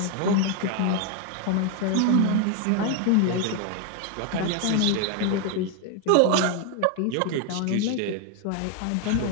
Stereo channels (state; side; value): different; both; correlation 0.01